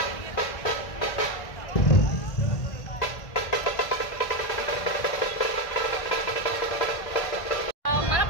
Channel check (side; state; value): right; late; 1.5 ms